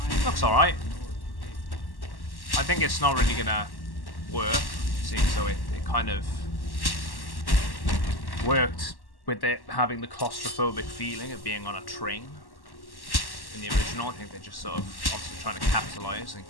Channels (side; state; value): right; late; 1.1 ms